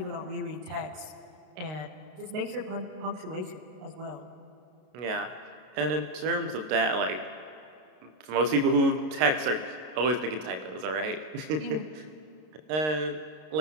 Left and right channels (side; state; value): left; late; 32 ms